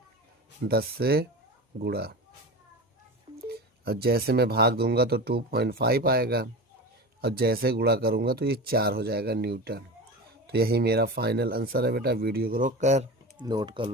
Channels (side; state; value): both; normal; correlation 0.28